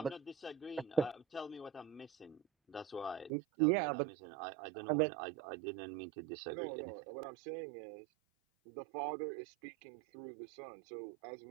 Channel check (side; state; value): left; drops out; at 3.3 s